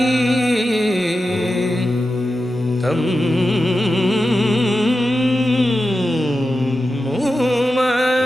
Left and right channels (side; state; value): both; normal; correlation 0.91